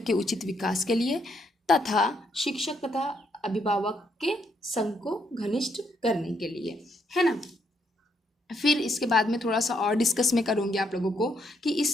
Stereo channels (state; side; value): normal; both; correlation 0.74